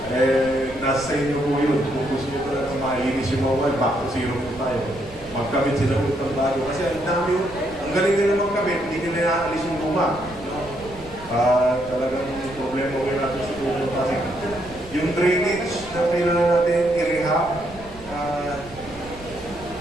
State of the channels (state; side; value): noise; right; rumble, 19 dB below the sound